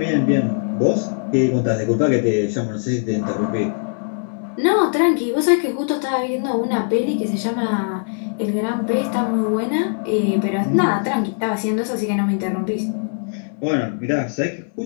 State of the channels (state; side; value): silent; right; digital silence